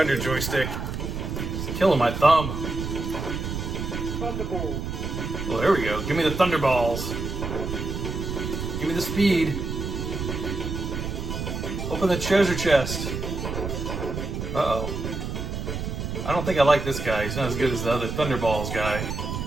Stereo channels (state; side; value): noise; right; rumble, 4 dB below the sound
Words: joystick. It's killing my thumb. Thunderball. Well, there we go. Give me the Thunderballs. Give me the speed. Open the treasure chest. Uh-oh. I don't think I like this guy. He's not as good as the other Thunderballs guy.